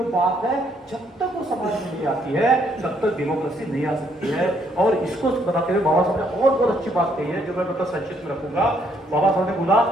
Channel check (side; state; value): both; normal; correlation 0.70